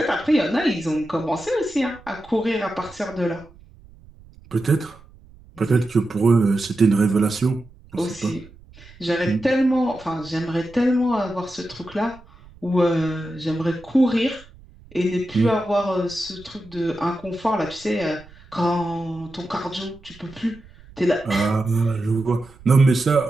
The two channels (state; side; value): noise; right; rumble, 23 dB below the sound